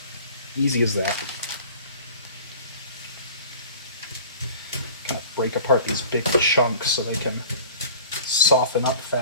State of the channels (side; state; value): both; inverted; correlation -0.44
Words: easy as that. Kind of break apart these big chunks so they can soften up